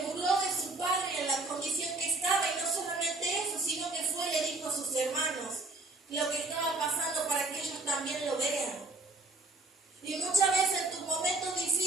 burló de su padre en la condición que estaba, y no solamente eso, sino que fue y le dijo a sus hermanos lo que estaba pasando para que ellos también lo vean. Y muchas veces en tus momentos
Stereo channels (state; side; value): quieter; left; 3.0 dB